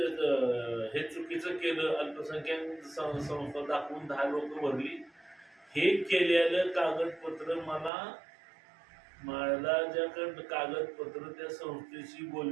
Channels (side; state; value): left; drops out; at 7.9 s